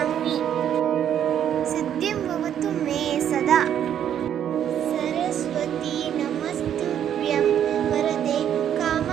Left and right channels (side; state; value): left; quieter; 9.8 dB